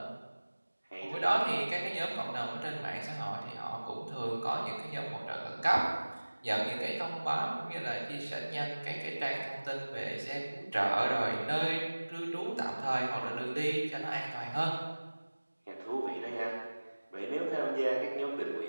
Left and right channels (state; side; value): inverted; both; correlation -1.00